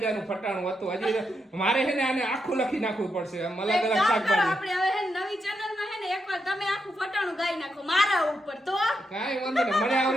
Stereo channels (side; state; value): both; normal; correlation 0.83